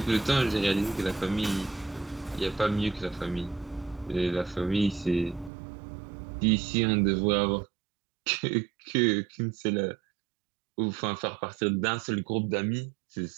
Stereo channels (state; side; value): drops out; left; at 5.5 s